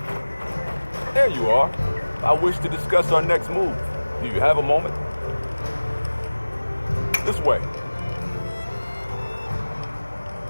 There you are. I wish to discuss our next move. Do you have a moment? This way.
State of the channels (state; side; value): inverted; both; correlation -1.00